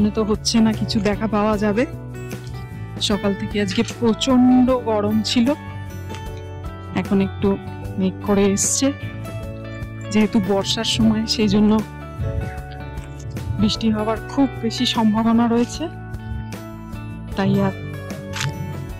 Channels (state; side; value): identical; both; correlation 1.00